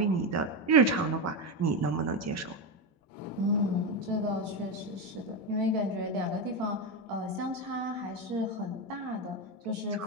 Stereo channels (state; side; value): normal; both; correlation 0.12